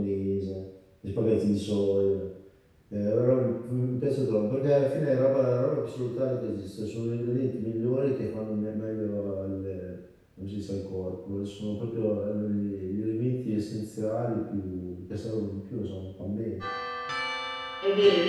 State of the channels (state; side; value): identical; both; correlation 1.00